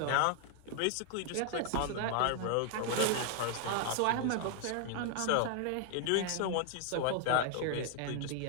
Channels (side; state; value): both; different; correlation 0.00